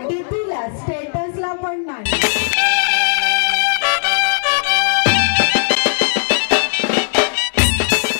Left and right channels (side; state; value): right; silent; 62 dB below the other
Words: डीपीला स्टेटसला पण नाही।